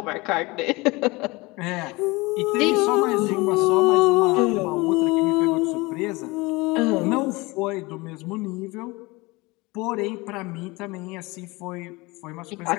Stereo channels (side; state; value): right; quieter; 23.6 dB